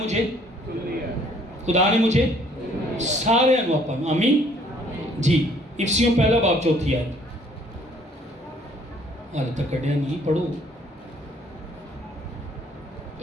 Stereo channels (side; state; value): both; normal; correlation 0.61